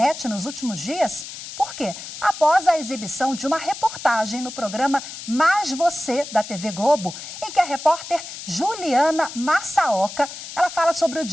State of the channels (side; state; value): left; noise; hiss, 11 dB below the sound